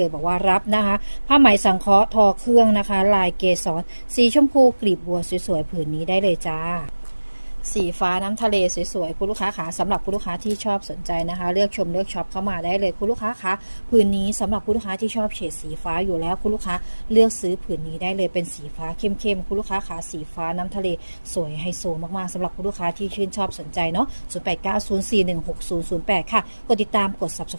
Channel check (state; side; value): inverted; both; correlation -1.00